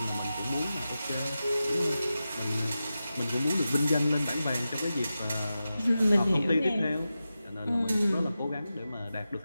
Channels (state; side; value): inverted; both; correlation -0.92